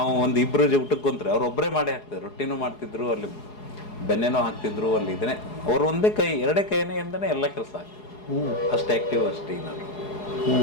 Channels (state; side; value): late; right; 4.8 ms